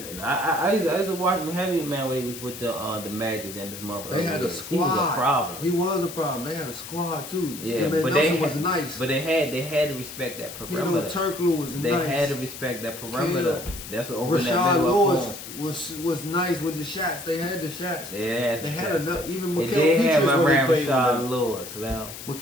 And I used to watch him heavy, man, when he was with the Magic and his mother. They had a squad. He was a problem. He was a problem. They had a squad too. Yeah, but they was nice. But they had to respect that perimeter. Turkoglu was They nice. had to respect that perimeter. That's what opened that Rashad middle up Lewis was nice with the shots. They had the shots. They had enough. Even They Mikal did have Petras my when they man played with Rashad them. Lewis now.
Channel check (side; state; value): left; noise; hiss, 12 dB below the sound